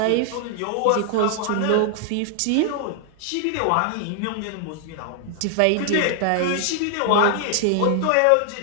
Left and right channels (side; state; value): both; different; correlation 0.00